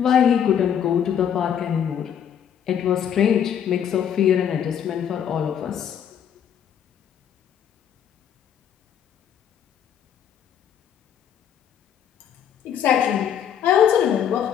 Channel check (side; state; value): right; quieter; 8.9 dB